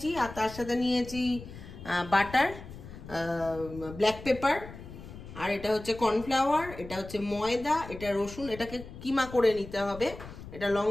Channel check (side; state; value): left; noise; rumble, 14 dB below the sound